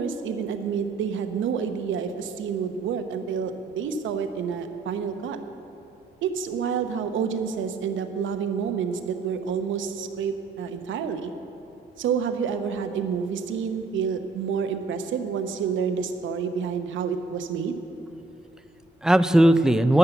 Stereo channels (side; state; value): left; quieter; 3.7 dB